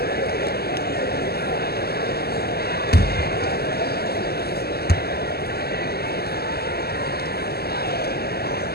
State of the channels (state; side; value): late; right; 0.46 ms